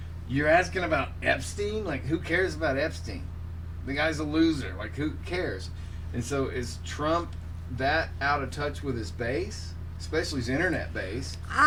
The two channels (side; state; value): both; identical; correlation 1.00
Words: "You're asking about Epstein? Like, who cares about Epstein? The guy's a loser. Like, who cares?" And so is Trump that out of touch with his base, especially his internet base?